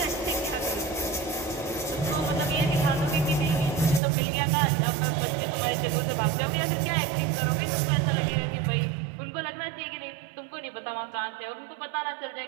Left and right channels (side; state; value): left; drops out; at 4.0 s